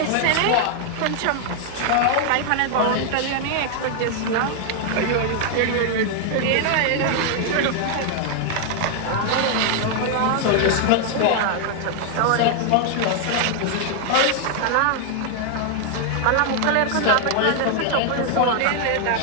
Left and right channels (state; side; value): different; both; correlation 0.00